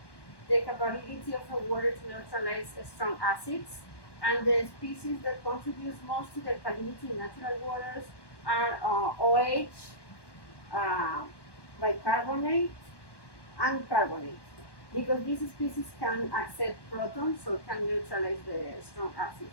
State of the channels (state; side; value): late; right; 1.1 ms